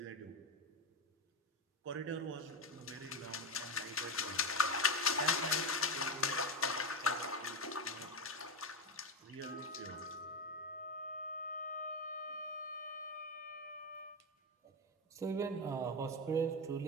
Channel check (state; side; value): normal; both; correlation 0.14